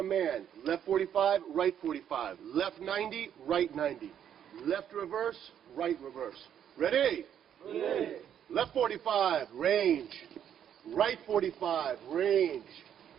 left 45, right 45. Left 90, right 90. Left reverse, right reverse. Ready? Ready. Left 45, range. Right 45, range.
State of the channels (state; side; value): quieter; left; 9.4 dB